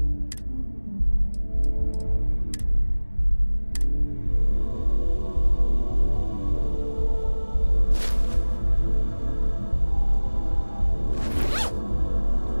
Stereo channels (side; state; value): both; inverted; correlation -1.00